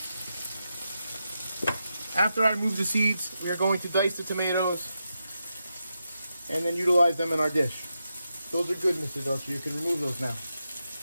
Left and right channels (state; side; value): inverted; both; correlation -0.87